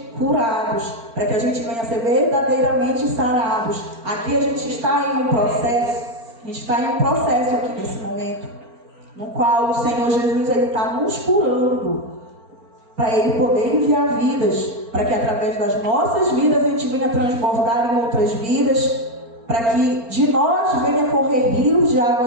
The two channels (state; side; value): late; left; 4.4 ms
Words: curados. Para que a gente venha a ser verdadeiramente sarados. Aqui a gente está em um processo. A gente está em um processo aqui nesse momento. No qual o Senhor Jesus está nos curando, para Ele poder enviar vidas, para que através das nossas vidas a gente venha transbordar em outras vidas, para que de nós venha correr rios de